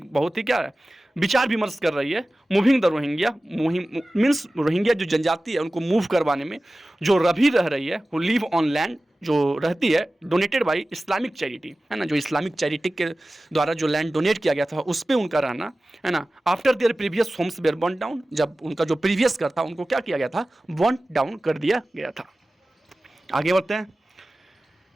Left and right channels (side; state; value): both; normal; correlation 0.96